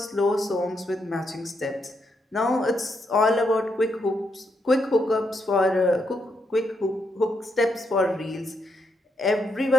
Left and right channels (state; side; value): normal; both; correlation 0.79